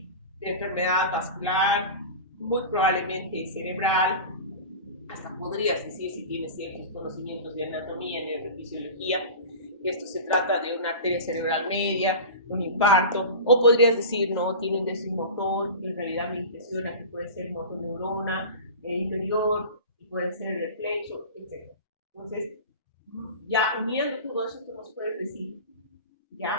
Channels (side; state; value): both; inverted; correlation -0.32